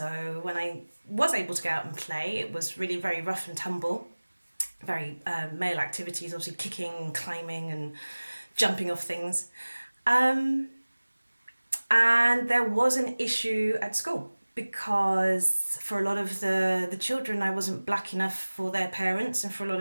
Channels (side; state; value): both; inverted; correlation -1.00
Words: when I was able to go out and play, it was really very rough and tumble, very male activities, obviously kicking, climbing, and jumping off things. And there was an issue at school, because for a lot of the children, I wasn't black enough for their parents, and for a lot